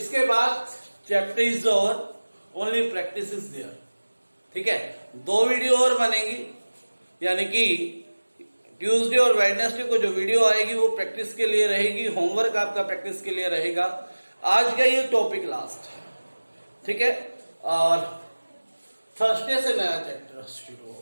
बाद chapter is over, only practice is there. ठीक है, 2 वीडियो और बनेंगी, यानी कि ट्यूसडे और वेडनेसडे को जो वीडियो आएगी वो प्रैक्टिस के लिए रहेगी, होमवर्क आपका प्रैक्टिस के लिए रहेगा। आज का ये टॉपिक लास्ट है, ठीक है। और थर्सडे से नया चैप्टर शुरू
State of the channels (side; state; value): both; inverted; correlation -1.00